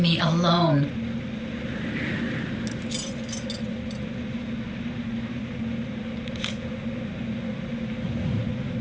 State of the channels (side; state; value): both; identical; correlation 1.00